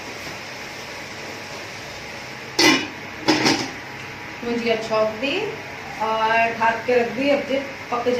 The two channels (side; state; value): both; identical; correlation 1.00